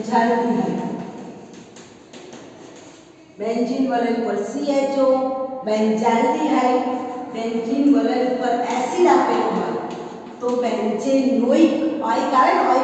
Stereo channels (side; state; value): both; identical; correlation 1.00